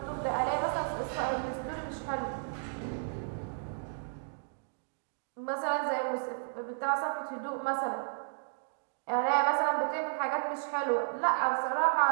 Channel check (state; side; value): silent; left; digital silence